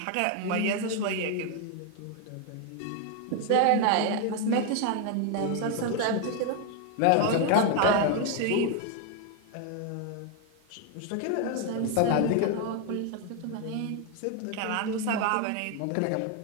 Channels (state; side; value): different; both; correlation 0.01